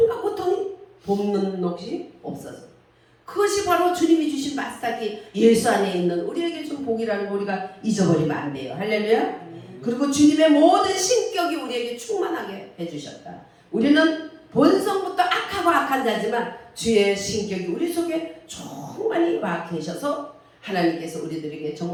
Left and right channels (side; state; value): both; identical; correlation 1.00